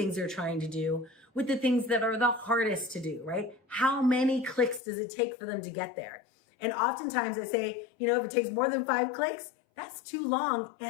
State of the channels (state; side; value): drops out; right; at 4.8 s